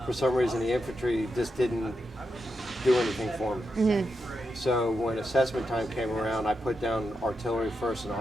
for some reason the infantry just didn't do anything for me. So when assessment time came around, I put down artillery first and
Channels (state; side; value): normal; both; correlation 0.86